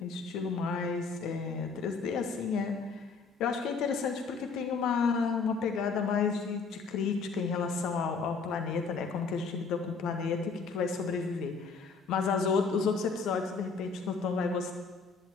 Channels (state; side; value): quieter; right; 4.9 dB